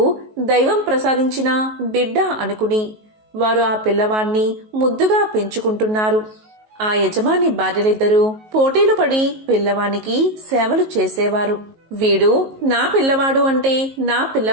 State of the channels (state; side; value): late; left; 19 ms